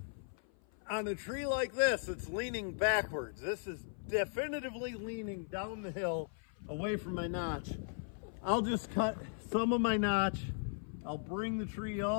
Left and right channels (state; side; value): silent; right; 53 dB below the other